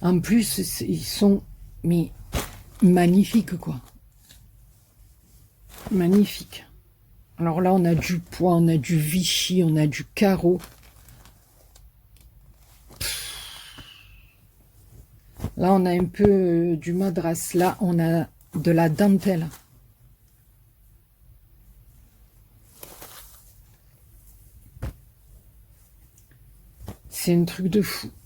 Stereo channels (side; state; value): both; identical; correlation 1.00